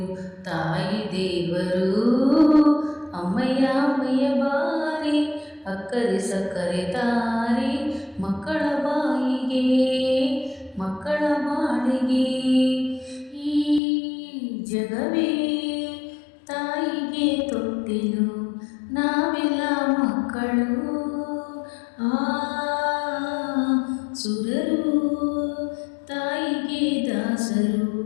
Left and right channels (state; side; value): drops out; right; at 13.8 s